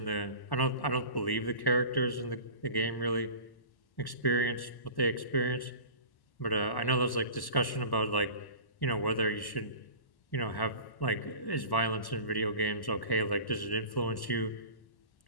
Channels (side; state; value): right; late; 1.1 ms